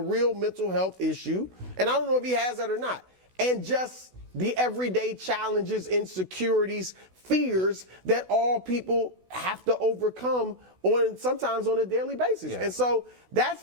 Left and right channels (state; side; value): late; left; 16 ms